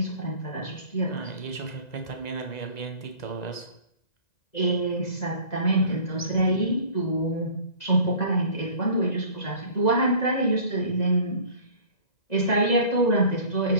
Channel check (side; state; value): right; late; 2.0 ms